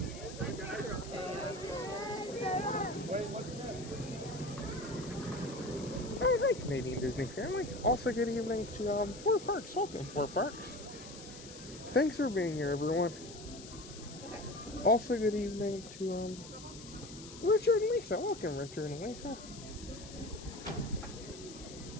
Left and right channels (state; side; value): noise; left; hiss, 15 dB below the sound